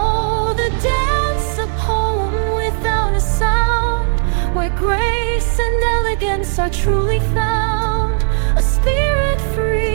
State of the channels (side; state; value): left; silent; 69 dB below the other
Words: the dance, a poem without a sound, where grace and elegance are truly found. A spirit